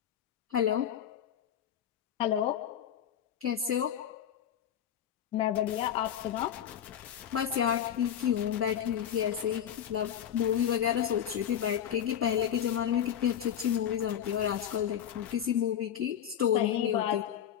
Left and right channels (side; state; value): right; quieter; 9.6 dB